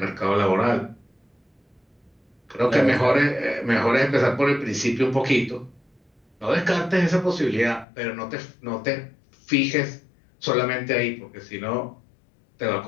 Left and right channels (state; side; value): drops out; right; at 7.9 s